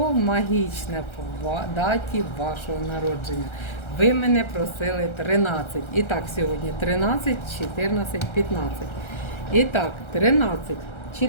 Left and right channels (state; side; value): late; right; 1.3 ms